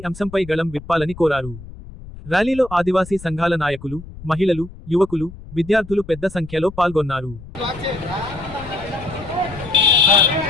అంశంపై గళం విప్పాలని కోరారు. ర్యాలీలో ఆదివాసీ సంఘాల నాయకులు, మహిళలు, యువకులు, విద్యార్థులు పెద్ద సంఖ్యలో పాల్గొన్నారు.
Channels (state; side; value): noise; left; rumble, 16 dB below the sound